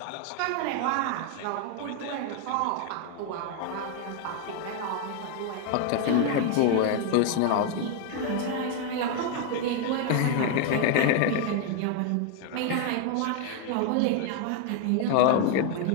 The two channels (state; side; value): different; both; correlation 0.00